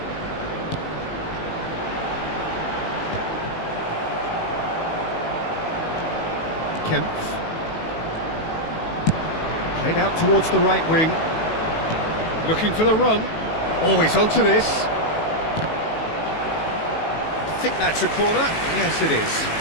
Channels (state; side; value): late; right; 18 ms